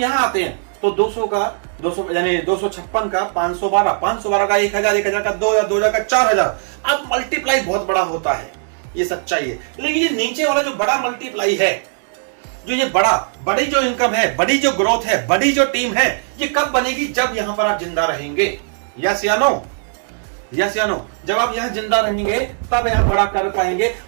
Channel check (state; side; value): silent; left; digital silence